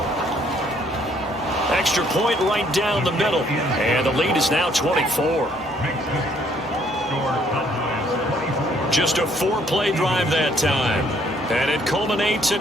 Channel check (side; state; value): both; normal; correlation 0.65